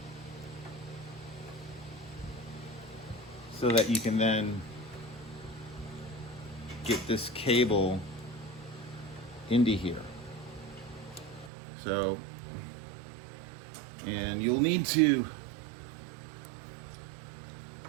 So that you can then get this cable into here. So, and you'll need to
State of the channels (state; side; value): drops out; left; at 11.5 s